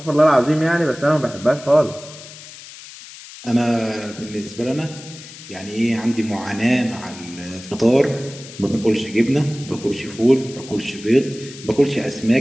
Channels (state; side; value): noise; left; hiss, 16 dB below the sound